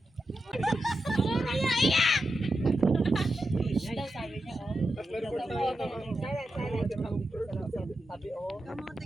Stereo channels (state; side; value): normal; both; correlation 0.89